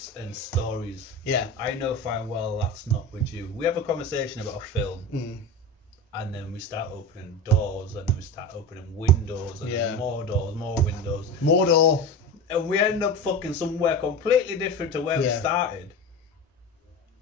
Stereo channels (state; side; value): normal; both; correlation 0.27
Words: and stories, I know fine well that's not with you. We have a conversation about a film, and then we start opening doors, and then we start opening windows, and then more doors, more windows, more door, and we end up fucking somewhere completely different to where we started.